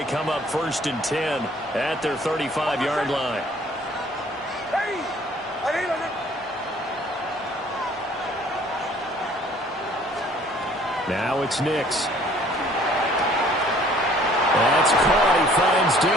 come up first and 10 at their 35-yard line. Now it's Nix. That's caught. He finds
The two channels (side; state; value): both; normal; correlation 0.56